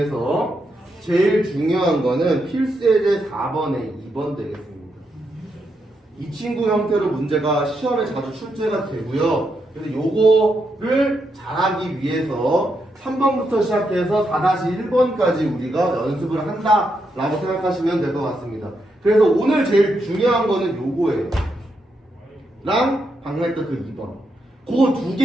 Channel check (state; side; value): normal; both; correlation 0.82